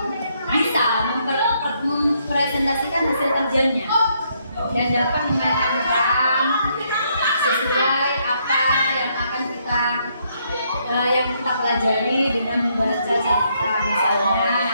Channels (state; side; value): inverted; both; correlation -0.73